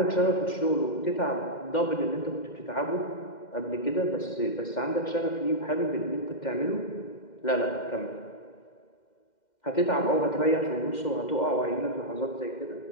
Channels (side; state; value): right; late; 2.1 ms